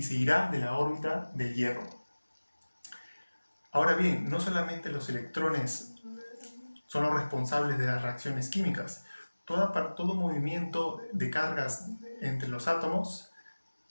se irá de la órbita del hierro. Ahora bien, no solamente los electrones son los responsables de las reacciones químicas. Todo movimiento de cargas entre los átomos,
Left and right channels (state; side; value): inverted; both; correlation -1.00